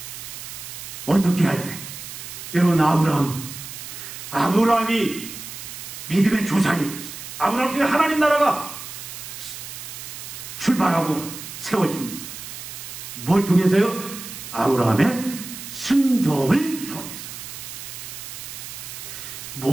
어떻게 할 때? 여러분, 아브라함이 믿음의 조상이 됐어요. 아브라함 통해 하나님 나라가 출발하고 세워집니다. 뭘 통해서요? 아브라함의 순종을 통해서.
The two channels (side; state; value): right; noise; hiss, 10 dB below the sound